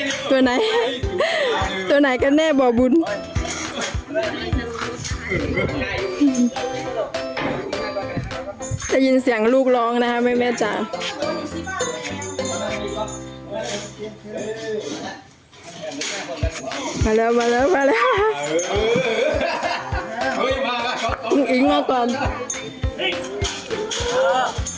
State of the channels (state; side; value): identical; both; correlation 1.00